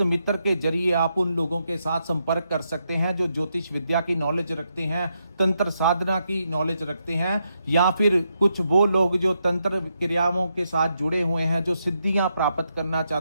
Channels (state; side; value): inverted; both; correlation -0.81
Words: मित्र के जरिए आप उन लोगों के साथ संपर्क कर सकते हैं जो ज्योतिष विद्या की नॉलेज रखते हैं, तंत्र साधना की नॉलेज रखते हैं, या फिर कुछ वो लोग जो तंत्र क्रियाओं के साथ जुड़े हुए हैं, जो सिद्धियां प्राप्त करना